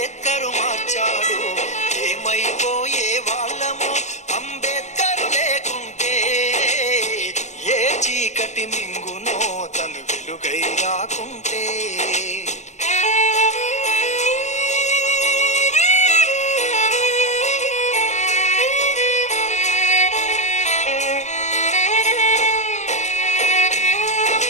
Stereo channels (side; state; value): right; late; 0.34 ms